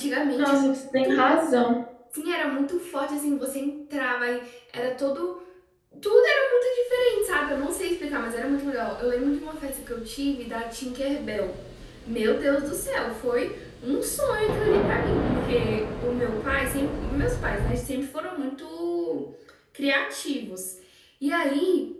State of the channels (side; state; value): both; identical; correlation 1.00